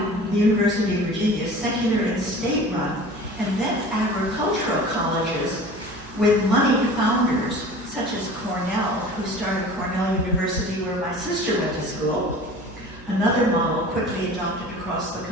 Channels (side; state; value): right; noise; hum, 19 dB below the sound